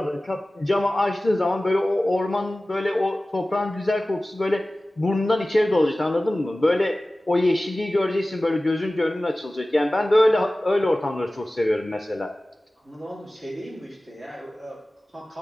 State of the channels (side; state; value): both; normal; correlation 0.97